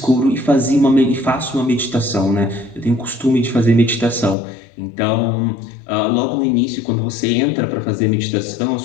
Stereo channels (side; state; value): right; drops out; at 4.4 s